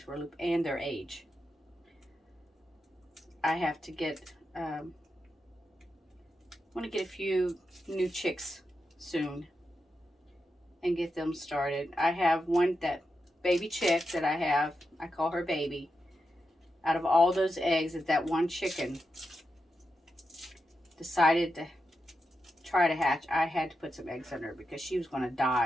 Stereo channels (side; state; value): both; normal; correlation 0.87